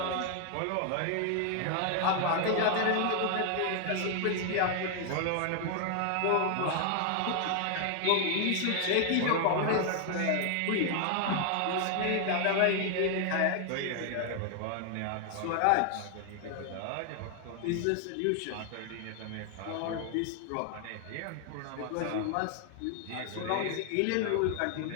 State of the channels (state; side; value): different; both; correlation 0.00